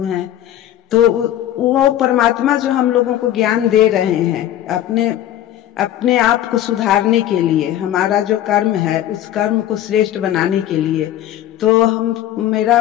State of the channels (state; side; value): quieter; right; 12.2 dB